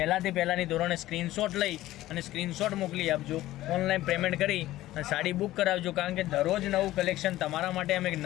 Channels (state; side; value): quieter; right; 15.7 dB